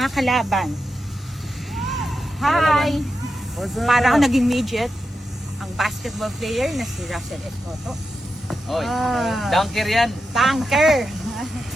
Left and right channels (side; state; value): both; normal; correlation 0.88